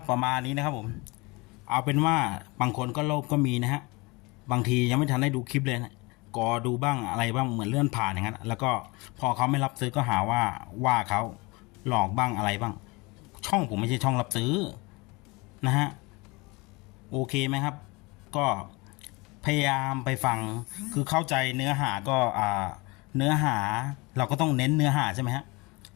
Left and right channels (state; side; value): quieter; right; 25.5 dB